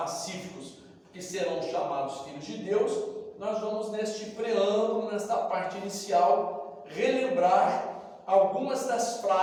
que serão chamados filhos de Deus, nós vamos neste preâmbulo, nesta parte inicial, relembrar algumas das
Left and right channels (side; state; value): both; identical; correlation 1.00